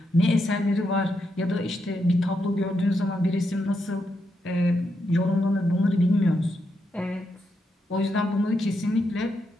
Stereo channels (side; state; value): both; normal; correlation 0.82